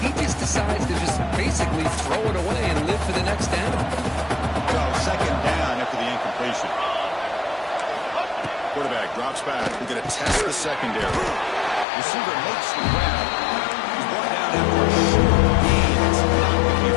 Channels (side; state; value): right; drops out; at 11.9 s